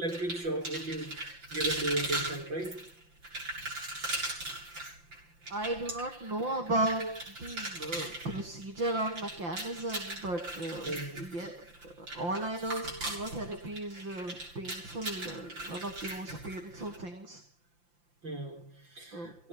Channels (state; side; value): late; left; 5.8 ms